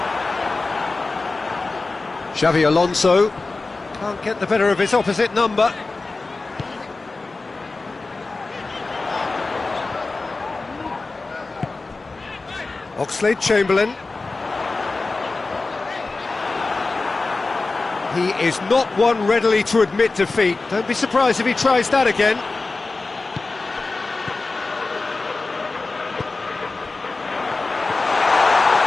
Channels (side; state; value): right; quieter; 3.6 dB